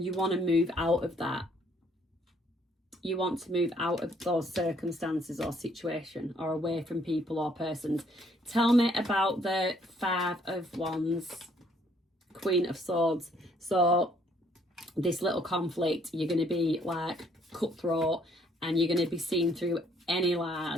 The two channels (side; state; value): both; normal; correlation 0.65